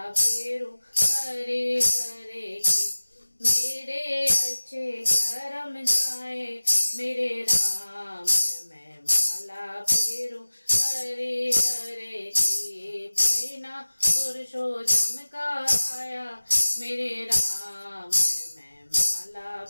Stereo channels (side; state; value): both; inverted; correlation -1.00